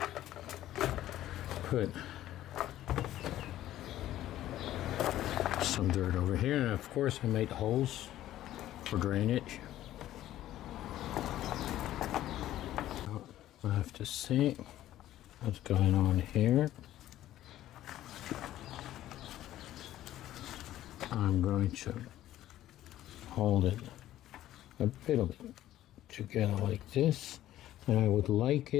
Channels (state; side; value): quieter; right; 13.6 dB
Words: put some dirt over here, and of course I made holes for drainage. I have to see what's going on here. I'm going to hold it a little bit together like this, and I would like